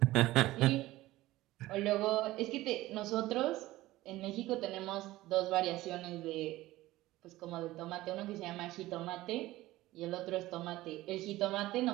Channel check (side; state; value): left; quieter; 17.2 dB